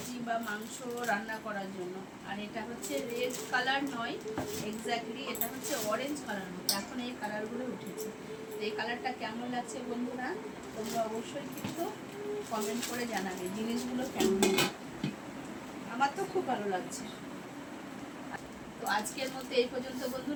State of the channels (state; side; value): identical; both; correlation 1.00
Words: বা মাংস রান্না করার জন্য। আর এটা হচ্ছে রেড কালার নয় এক্স্যাক্টলি, এটা হচ্ছে অরেঞ্জ কালার মতো, এখন এই কালারগুলো উঠেছে। তো এই কালারটা কেমন লাগছে বন্ধুরা তোমরা অবশ্যই কিন্তু কমেন্ট করে জানাবে জিনিসগুলো কেমন। আমার তো খুব ভালো লাগছে। তো আজকের মধ্যে এই পর্যন্ত